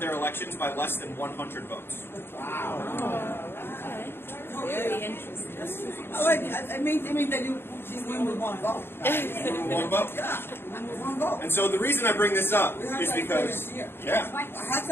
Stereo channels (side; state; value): right; late; 0.11 ms